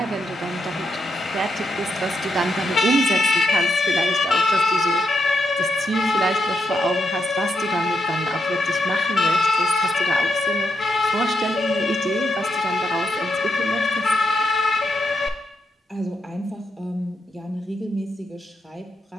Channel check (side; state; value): both; normal; correlation 0.82